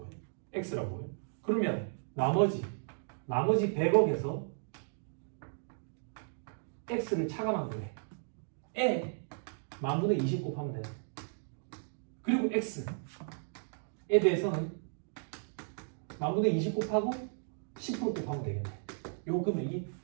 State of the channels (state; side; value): silent; left; digital silence